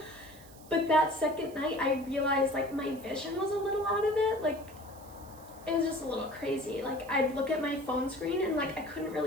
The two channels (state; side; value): noise; right; hiss, 22 dB below the sound